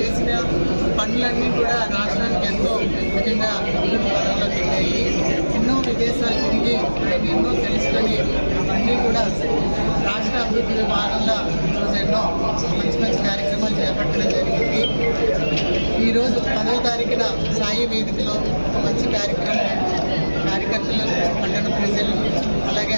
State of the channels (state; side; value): inverted; both; correlation -1.00